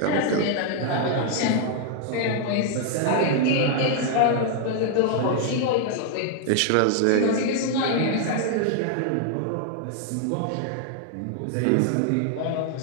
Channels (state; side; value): different; both; correlation 0.00